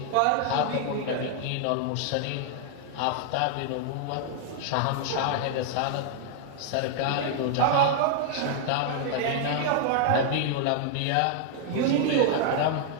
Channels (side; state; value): both; different; correlation 0.00